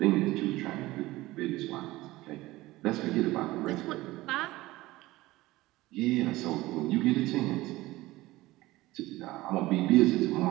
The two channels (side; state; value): left; quieter; 18.5 dB